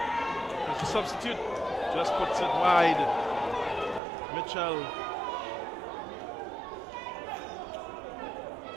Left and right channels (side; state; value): left; drops out; at 4.0 s